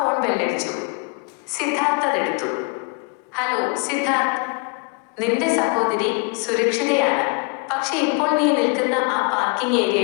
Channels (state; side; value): quieter; right; 32.0 dB